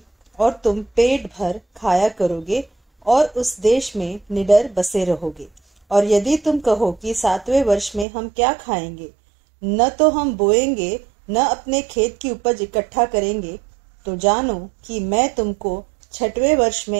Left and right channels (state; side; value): drops out; left; at 8.1 s